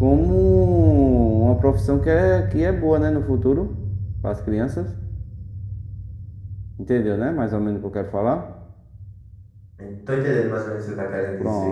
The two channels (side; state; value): both; identical; correlation 1.00